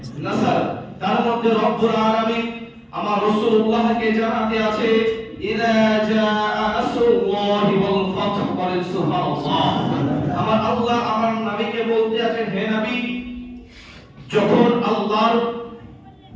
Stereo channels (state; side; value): identical; both; correlation 1.00